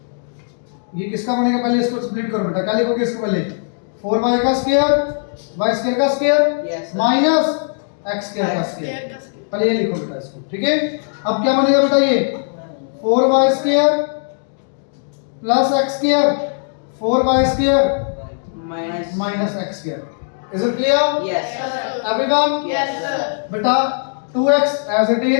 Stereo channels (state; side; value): silent; right; digital silence